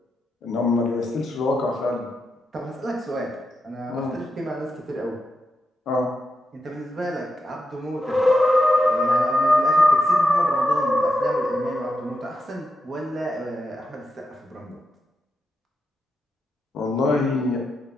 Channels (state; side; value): normal; both; correlation 0.86